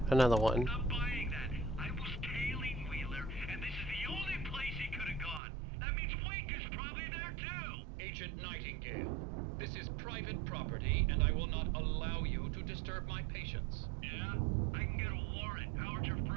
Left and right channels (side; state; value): left; drops out; at 5.4 s